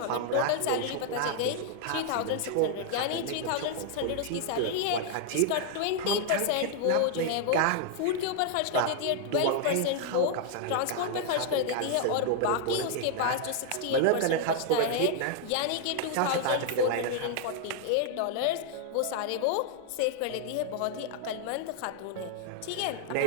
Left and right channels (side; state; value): both; different; correlation 0.00